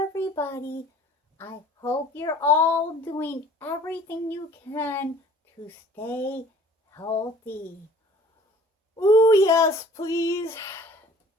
everybody. I hope you're all doing everything you can to stay healthy. Ooh, yes, please.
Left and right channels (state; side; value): normal; both; correlation 0.51